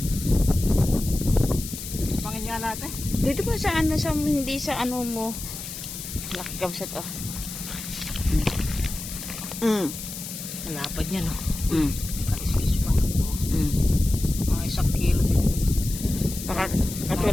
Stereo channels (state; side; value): noise; left; hiss, 9 dB below the sound